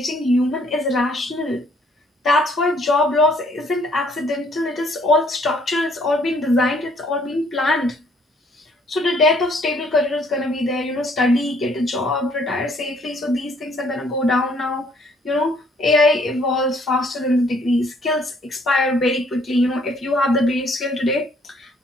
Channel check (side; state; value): both; normal; correlation 0.63